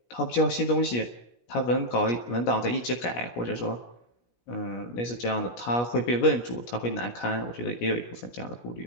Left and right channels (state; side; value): late; right; 17 ms